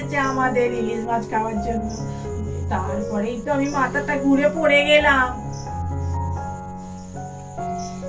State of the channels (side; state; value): both; identical; correlation 1.00